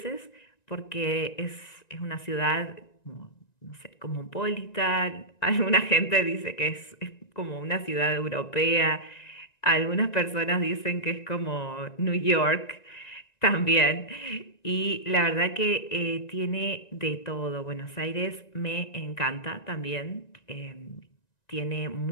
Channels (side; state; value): right; late; 1.9 ms